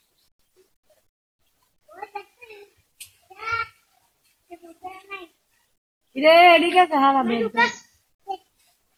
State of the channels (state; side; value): identical; both; correlation 1.00